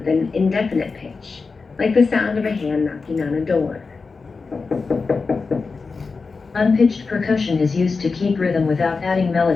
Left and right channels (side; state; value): right; quieter; 4.5 dB